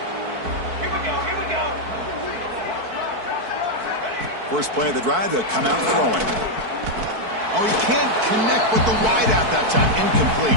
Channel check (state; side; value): late; left; 4.6 ms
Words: Here we go. First play of the drive, they'll come out throwing. Oh, he can't connect with the wideout that time. Incomplete.